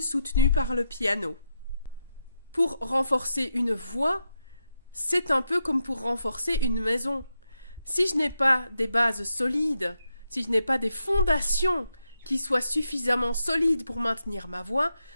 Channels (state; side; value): inverted; both; correlation -0.84